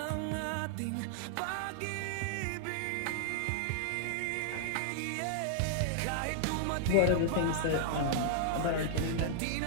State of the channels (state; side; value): different; both; correlation -0.01